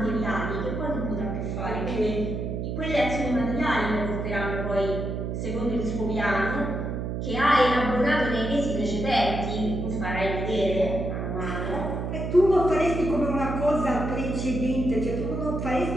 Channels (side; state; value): right; noise; hum, 3 dB below the sound